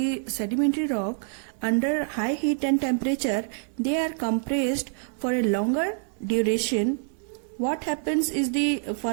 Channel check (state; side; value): silent; left; digital silence